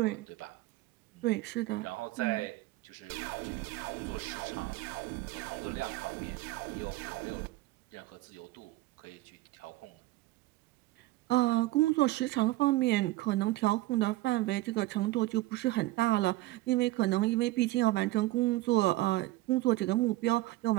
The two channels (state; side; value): quieter; left; 18.2 dB